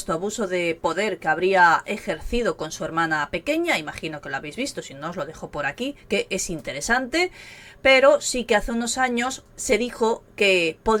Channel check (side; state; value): both; identical; correlation 1.00